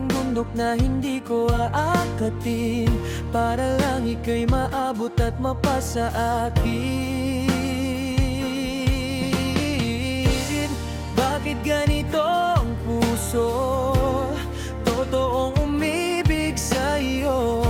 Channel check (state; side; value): identical; both; correlation 1.00